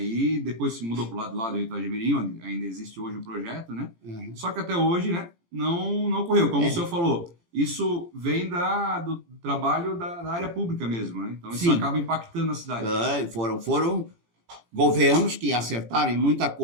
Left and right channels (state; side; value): late; left; 18 ms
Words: E depois se mudou para o lado do Rio Itajaí-Mirim, onde ainda existe hoje o projeto, né? Só que até hoje, né, não ocorreu. Como o senhor falou, isso vem do trabalho da área pública mesmo. Né? Então isso acaba impactando a cidade. Foram governos que acertaram em muita